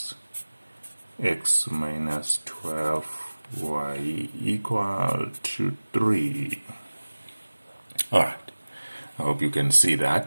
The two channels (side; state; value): both; inverted; correlation -1.00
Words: x minus 12y equal to 3. Alright, I hope you can see